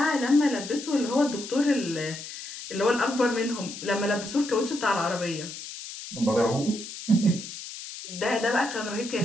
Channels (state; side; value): noise; left; hiss, 11 dB below the sound